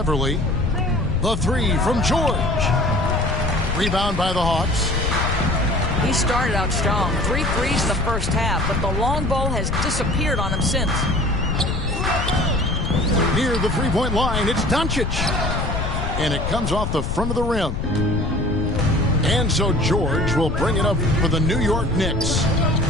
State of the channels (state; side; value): noise; left; rumble, 2 dB below the sound